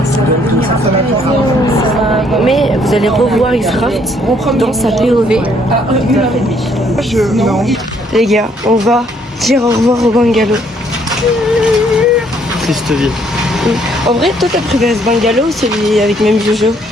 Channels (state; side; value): normal; both; correlation 0.66